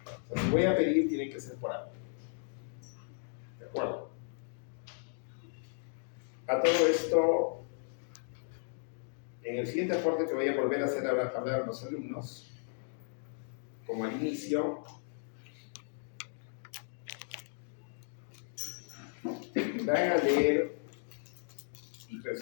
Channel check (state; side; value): silent; right; digital silence